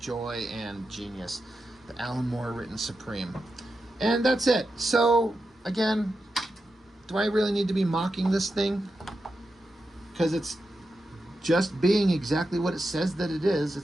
and genius, the Alan Moore written Supreme. And that's it. So, again... do I really need to be mocking this thing? Because it's just being exactly what it says that it is.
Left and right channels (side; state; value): both; normal; correlation 0.89